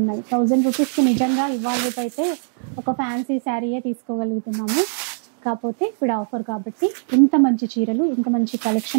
1000 రూపీస్ కి నిజంగా ఇవాళ రేపు అయితే ఒక ఫ్యాన్సీ శారీయే తీసుకోగలుగుతున్నాము. కాకపోతే ఇప్పుడు ఆఫర్ కాబట్టి ఇంత మంచి చీరలు, ఇంత మంచి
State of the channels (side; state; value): left; silent; digital silence